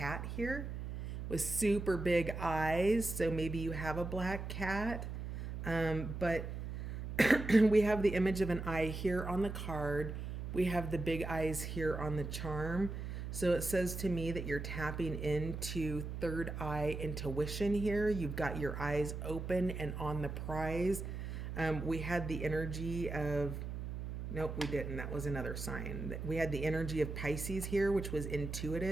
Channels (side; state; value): right; noise; hum, 6 dB below the sound